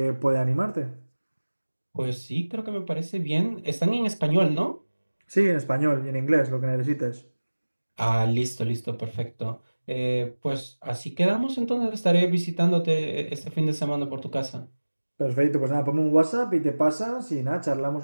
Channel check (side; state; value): both; inverted; correlation -1.00